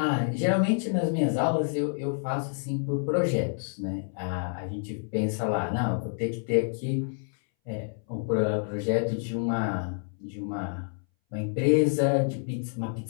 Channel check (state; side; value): silent; right; 59 dB below the other